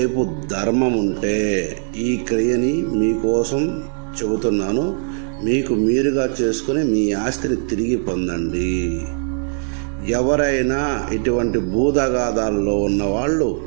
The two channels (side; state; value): left; silent; 64 dB below the other